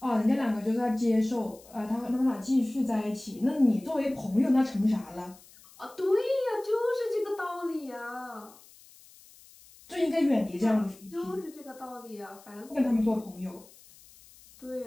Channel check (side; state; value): left; noise; hiss, 24 dB below the sound